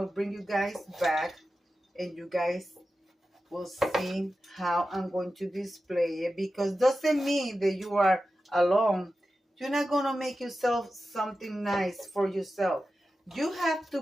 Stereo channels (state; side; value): normal; both; correlation 0.93